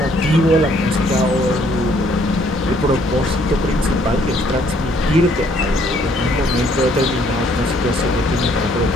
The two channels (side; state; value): both; normal; correlation 0.64